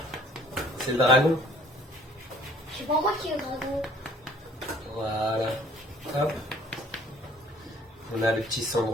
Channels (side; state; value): both; normal; correlation 0.56